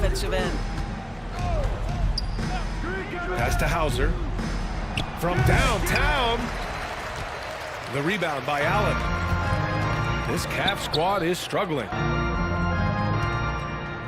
end. Pass to Hauser. From downtown. The rebound by Allen. This Cavs squad is struggling.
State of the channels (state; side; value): identical; both; correlation 1.00